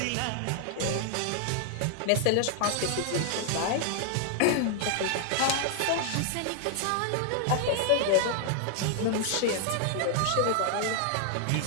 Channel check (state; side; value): different; both; correlation 0.00